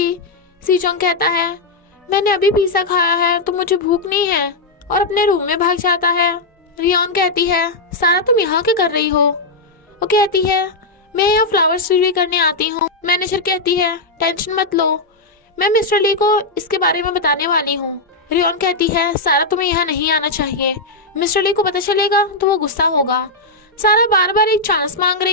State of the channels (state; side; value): quieter; right; 3.1 dB